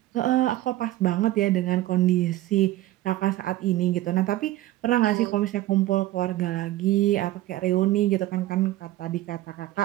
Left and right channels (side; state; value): left; quieter; 15.6 dB